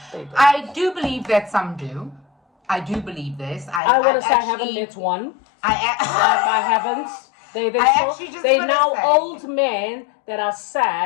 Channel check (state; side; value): drops out; right; at 3.8 s